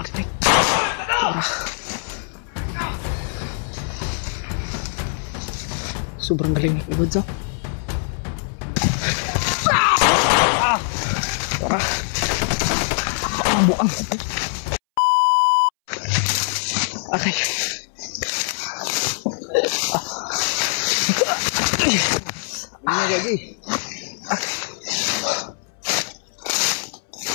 Wala. Sobrang galing ni Kuya Bats, oh. Tara. Buang. Okay. Ini jadi. Okay.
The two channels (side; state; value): right; silent; 64 dB below the other